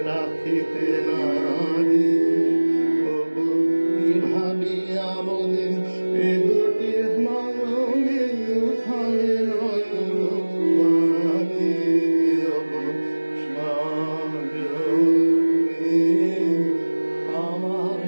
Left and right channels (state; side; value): inverted; both; correlation -1.00